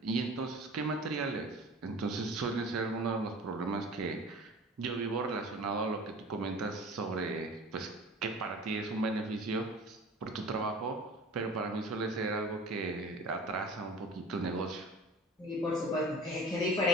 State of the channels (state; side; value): normal; both; correlation 0.40